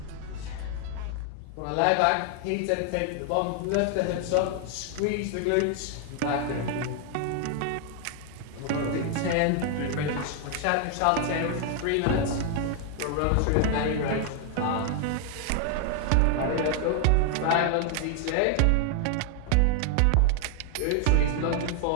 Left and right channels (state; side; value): different; both; correlation 0.00